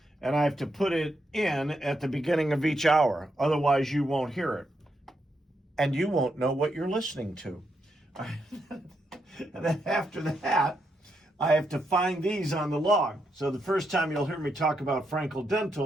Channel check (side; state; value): both; normal; correlation 0.81